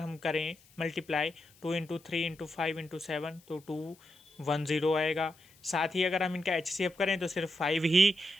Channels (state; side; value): noise; left; hiss, 28 dB below the sound